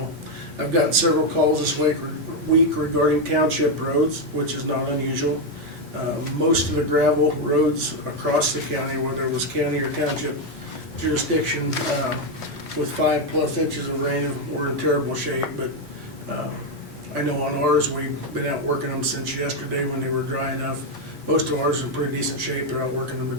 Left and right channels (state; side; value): normal; both; correlation 0.05